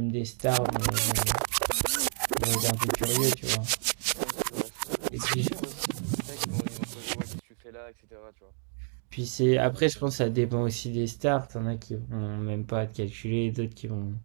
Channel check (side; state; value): left; silent; digital silence